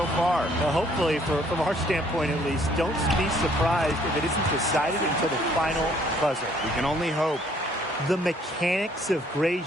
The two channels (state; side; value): normal; both; correlation 0.63